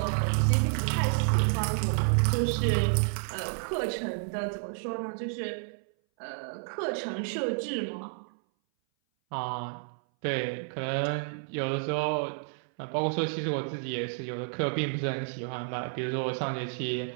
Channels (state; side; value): silent; left; 58 dB below the other